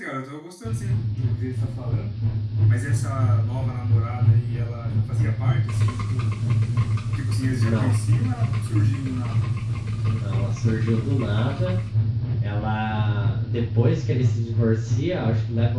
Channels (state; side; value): identical; both; correlation 1.00